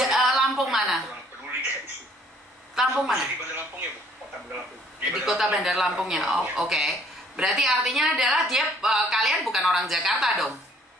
Lampung mana? Peduli guys. Lampung mana? Di Bandar Lampung ya Bu, kota Bandar Lampung. Di kota Bandar Lampung ya. Oh, oke. Berarti artinya adalah dia kalian bukan orang Jakarta dong.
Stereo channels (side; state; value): both; normal; correlation 0.60